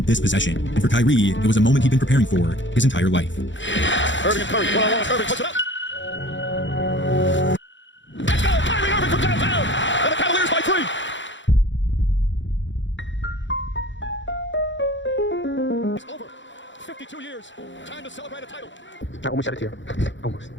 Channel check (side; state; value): right; late; 0.54 ms